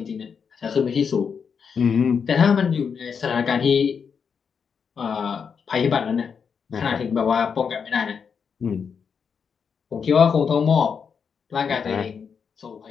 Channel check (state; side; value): quieter; right; 6.4 dB